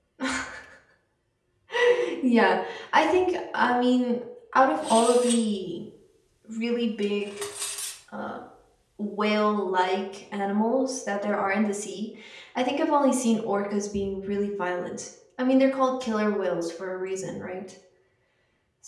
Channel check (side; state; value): both; identical; correlation 1.00